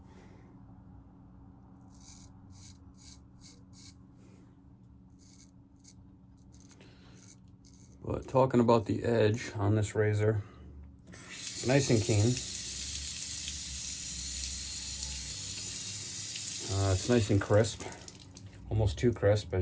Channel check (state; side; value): identical; both; correlation 1.00